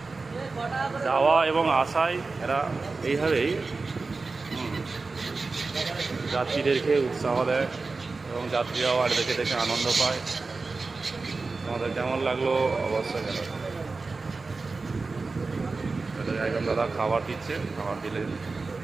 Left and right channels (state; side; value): quieter; left; 3.9 dB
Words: যাওয়া এবং আসায় এরা এইভাবেই যাত্রীদেরকে উৎসাহ দেয় এবং যাত্রীরাও আর দেখে দেখে আনন্দ পায়। আমাদের কেমন লাগলো অবশ্যই জানাবেন। একজন দাদা খাবার দিচ্ছে, খাবার দিলে